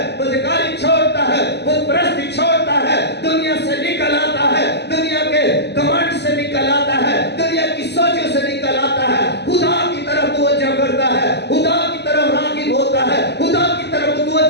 بدکاری چھوڑتا ہے، بت پرستی چھوڑتا ہے، دنیا سے نکل آتا ہے، دنیا کے گھمنڈ سے نکل آتا ہے، دنیا کی سوچوں سے نکل آتا ہے، خدا کی طرف توجہ کرتا ہے، خدا کی طرف راغب ہوتا ہے، خدا کی طرف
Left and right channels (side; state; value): right; late; 0.49 ms